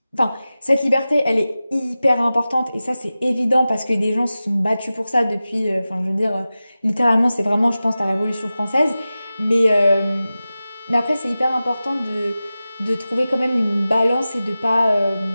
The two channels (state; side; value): inverted; both; correlation -0.95